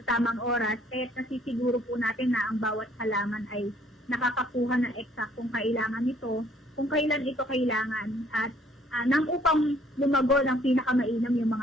tamang oras, kaya nasisiguro po natin na ang bawat halaman ay nakakakuha ng eksaktong kailangan nito, kung kailan ito kailangan, at nang upang lumago ng pinakamainam yung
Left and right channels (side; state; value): both; normal; correlation 0.62